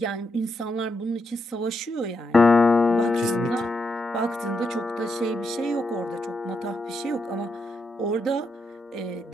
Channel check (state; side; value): normal; both; correlation 0.82